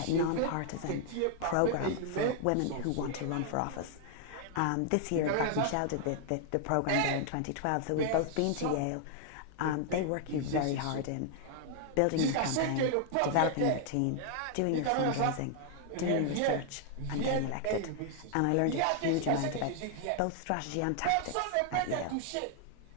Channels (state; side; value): different; both; correlation 0.00